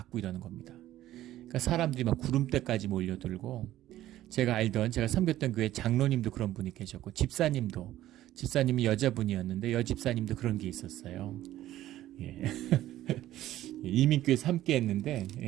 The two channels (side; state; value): left; quieter; 14.0 dB